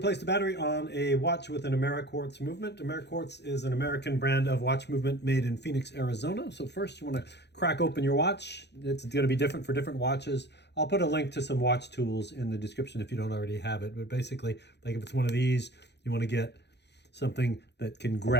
the battery on a watch with an Ameriquartz movement. Ameriquartz is an American brand of watch movement made in Phoenix, Arizona. So first you want to crack open your watch. It's going to be different for different watches. I'll put a link to some watch tools in the description if you don't already have it. But basically, like if it's one of these, you want to get something that can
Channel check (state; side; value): late; right; 0.50 ms